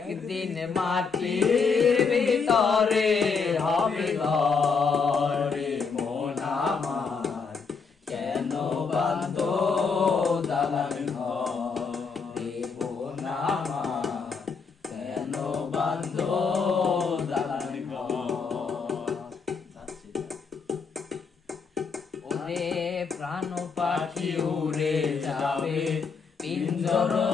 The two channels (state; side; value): quieter; right; 5.2 dB